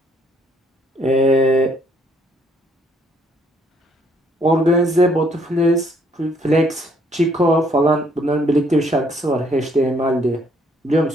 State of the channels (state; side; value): normal; both; correlation 0.67